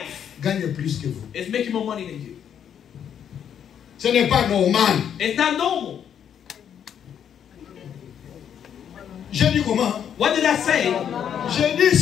gagne plus que vous. Is making more money than you. Ce n'est pas normal. It's not normal. J'ai dit comment? What did I say? J'ai dit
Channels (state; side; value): quieter; right; 8.8 dB